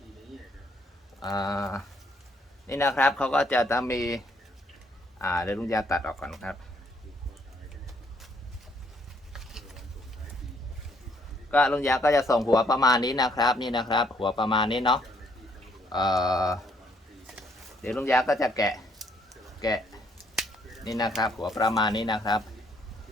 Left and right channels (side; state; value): both; normal; correlation 0.68